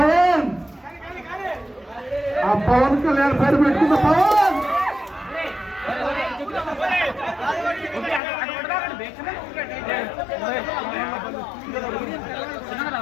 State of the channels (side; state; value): right; drops out; at 8.2 s